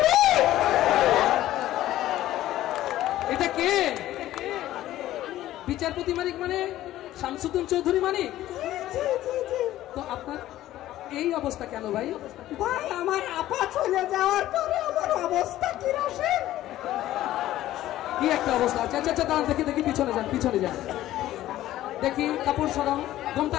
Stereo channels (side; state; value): right; quieter; 14.2 dB